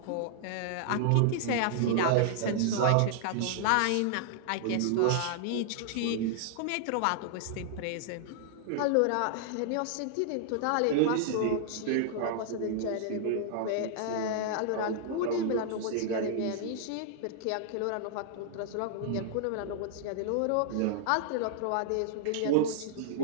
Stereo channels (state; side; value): different; both; correlation -0.01